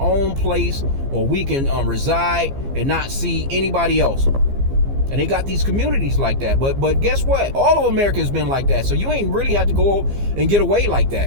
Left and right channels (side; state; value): left; late; 15 ms